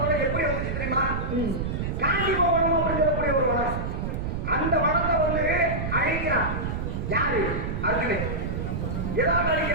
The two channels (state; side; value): noise; right; rumble, 2 dB below the sound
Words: முறை எப்படி வந்துச்சு தெரியுமா? காந்தி பவனம் அப்படின்னு சொல்லக்கூடிய ஒரு வனம். அந்த வனத்தை வந்து அழிக்கிறான். யாரு? அர்ஜுனன். எதாவது